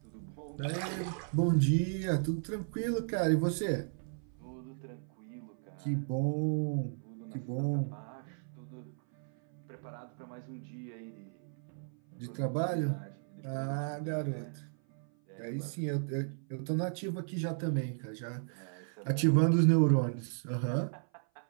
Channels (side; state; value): left; silent; 55 dB below the other